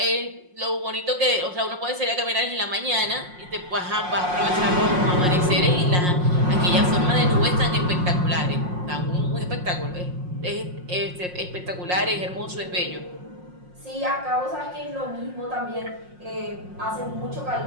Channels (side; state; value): left; late; 5.6 ms